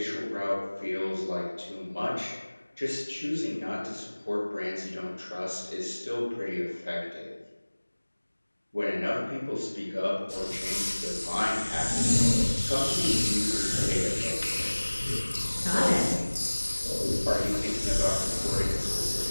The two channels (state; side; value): inverted; both; correlation -1.00